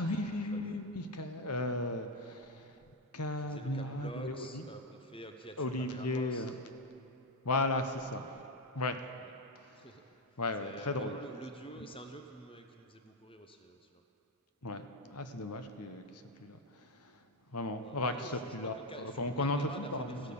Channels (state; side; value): normal; both; correlation 0.09